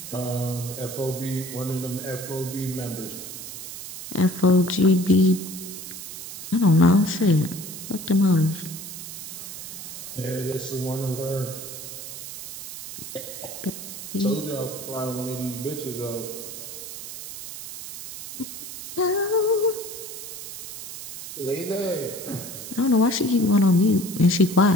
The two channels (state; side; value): noise; right; hiss, 10 dB below the sound